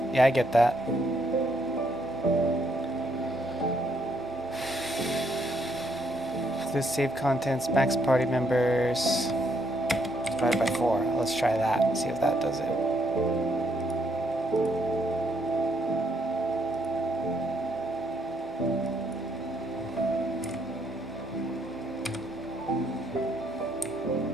Yeah, I get that. This save contents, max party members, divided by 4. Let's try that, see if that does it.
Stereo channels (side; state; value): both; normal; correlation 0.73